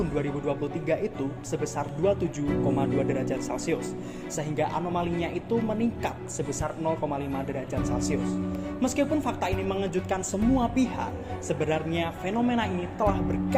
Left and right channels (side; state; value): both; identical; correlation 1.00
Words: 2023 itu sebesar 27,2 derajat Celcius, sehingga anomalinya itu meningkat sebesar 0,5 derajat Celcius. Meskipun fakta ini mengejutkan semua pihak, sebenarnya fenomena ini telah